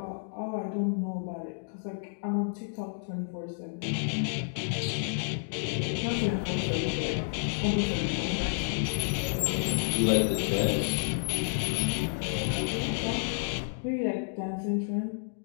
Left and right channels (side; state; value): right; silent; digital silence